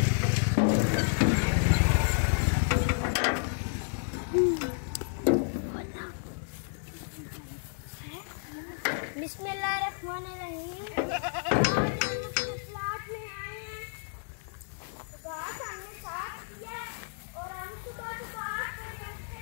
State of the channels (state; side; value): silent; right; digital silence